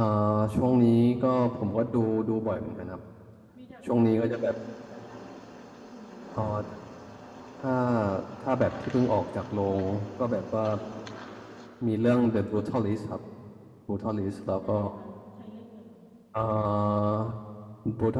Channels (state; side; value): identical; both; correlation 1.00